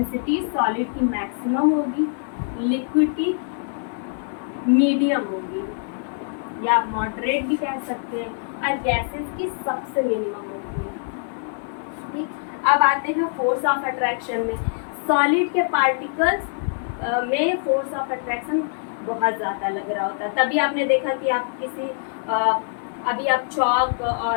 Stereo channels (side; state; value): right; silent; 63 dB below the other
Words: सॉलिड की मैक्सिमम होगी, लिक्विड की मीडियम होगी, या मॉडरेट भी कह सकते हैं, और गैसेस की सबसे मिनिमम होती है। ठीक, अब आते हैं फोर्स ऑफ अट्रैक्शन में। सॉलिड के पार्टिकल्स में फोर्स ऑफ अट्रैक्शन बहुत ज़्यादा लग रहा होता है। तभी आपने देखा कि आप किसी अभी आप चॉक